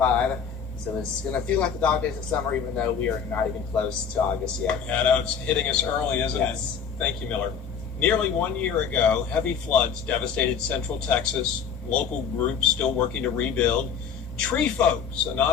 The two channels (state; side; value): quieter; right; 6.9 dB